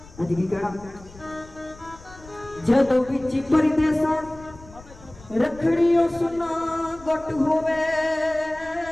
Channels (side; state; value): left; noise; rumble, 21 dB below the sound